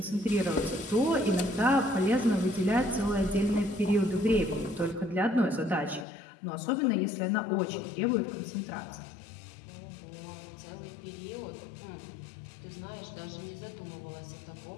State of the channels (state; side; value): drops out; right; at 6.1 s